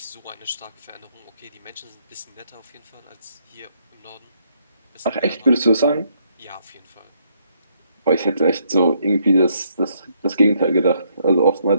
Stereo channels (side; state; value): both; inverted; correlation -0.72